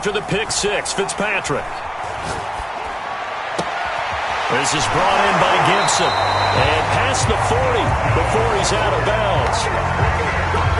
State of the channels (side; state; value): both; identical; correlation 1.00